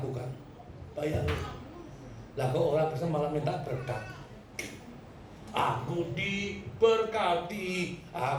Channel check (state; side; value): identical; both; correlation 1.00